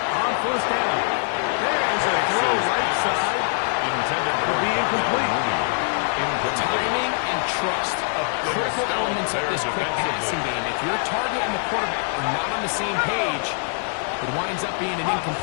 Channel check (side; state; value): right; silent; 61 dB below the other